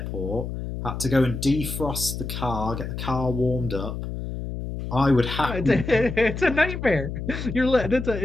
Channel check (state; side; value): noise; left; hum, 6 dB below the sound